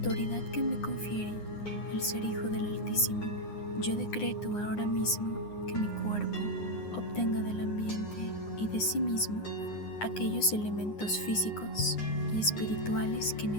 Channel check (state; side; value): late; right; 9.8 ms